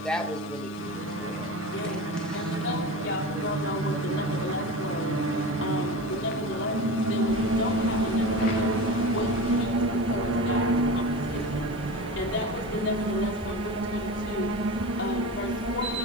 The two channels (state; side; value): noise; left; hiss, 27 dB below the sound